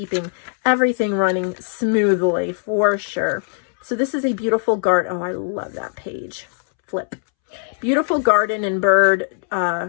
everything running smoothly, for sure. So this is a beautiful garden. Oh, I love that page. Flip. Beautiful garden and bird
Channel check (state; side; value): silent; right; 66 dB below the other